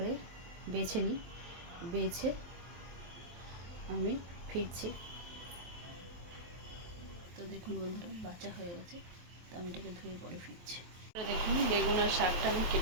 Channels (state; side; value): late; left; 23 ms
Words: বেছে নিই, বেছে আমি ফিরছি। তো দেখুন বন্ধুরা, বাঁচা হয়ে গেছে। তো আমি এটাকে ধুয়ে পরে ফিরছি। দেখুন বেগুন আর শাকটা আমি